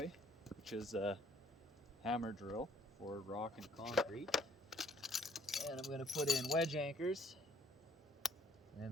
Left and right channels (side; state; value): both; normal; correlation 0.62